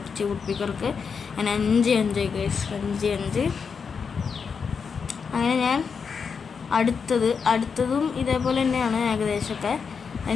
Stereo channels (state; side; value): quieter; right; 5.9 dB